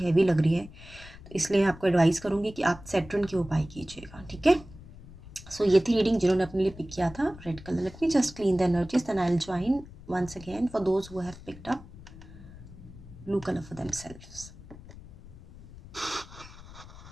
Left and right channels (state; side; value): noise; left; rumble, 18 dB below the sound